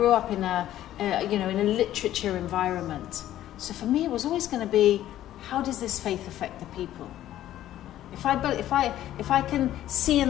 up in in a literature environment. So for me, it was always going to be, how does this faith affect the people? If I can see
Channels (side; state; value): right; quieter; 12.9 dB